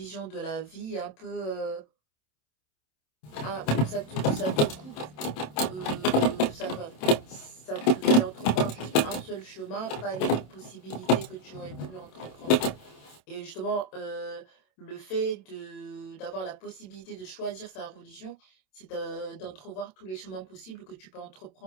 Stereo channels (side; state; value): right; late; 27 ms